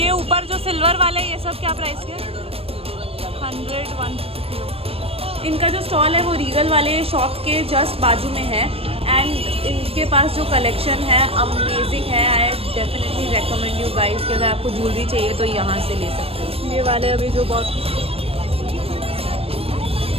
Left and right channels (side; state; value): left; late; 0.28 ms